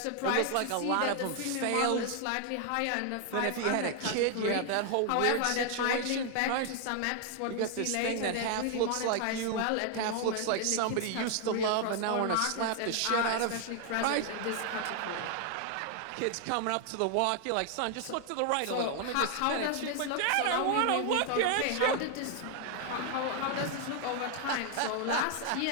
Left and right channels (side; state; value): both; different; correlation 0.00